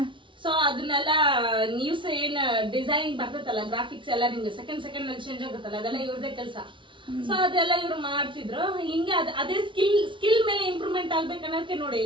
ಸೊ ಅದನ್ನೆಲ್ಲ ನ್ಯೂಸ್ ಏನ್ ಡಿಸೈನ್ ಬರ್ತೈತಲ್ಲ, ಗ್ರಾಫಿಕ್ಸ್ ಎಲ್ಲ ನಿಮ್ಗೆ ಸೆಕೆಂಡ್ ಅಲ್ಲಿ ಚೇಂಜ್ ಆಗುತ್ತಲ್ಲ, ಅದೆಲ್ಲ ಇವ್ರದೇ ಕೆಲಸ. ಸೊ ಅದೆಲ್ಲ ಇವ್ರು ಮಾಡ್ತಿದ್ರು. ಹಿಂಗೆ ಅದೇ ಸ್ಕಿಲ್ ಮೇಲೆ ಇಂಪ್ರೂವ್ಮೆಂಟ್ ಆಗ್ಬೇಕನ್ನೋಕೆ ನೋಡಿ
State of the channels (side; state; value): left; late; 0.24 ms